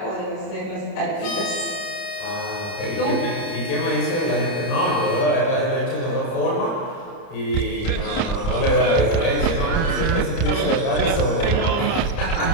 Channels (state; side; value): late; right; 30 ms